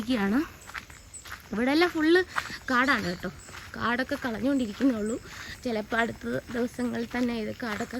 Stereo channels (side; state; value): both; identical; correlation 1.00